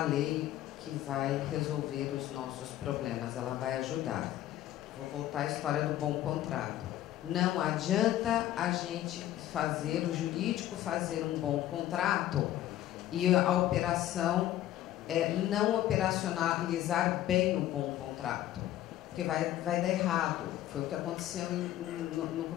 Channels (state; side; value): quieter; right; 13.2 dB